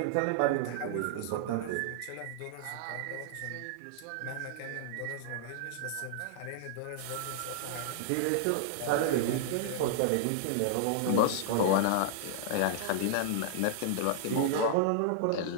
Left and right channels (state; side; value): different; both; correlation -0.01